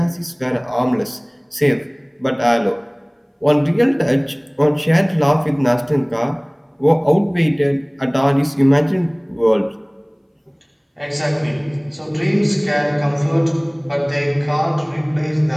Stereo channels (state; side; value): identical; both; correlation 1.00